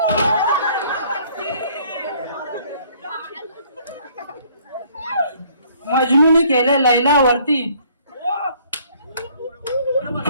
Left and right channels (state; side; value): inverted; both; correlation -0.60